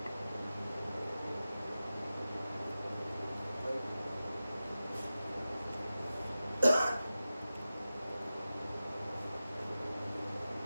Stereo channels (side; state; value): both; inverted; correlation -0.94